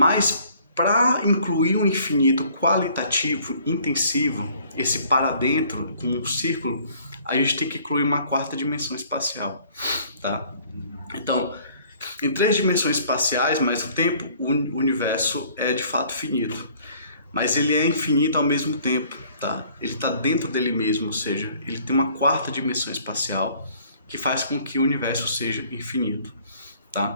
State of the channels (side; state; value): both; inverted; correlation -0.57